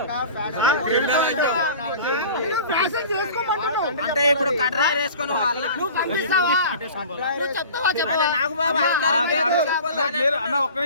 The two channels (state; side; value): inverted; both; correlation -0.40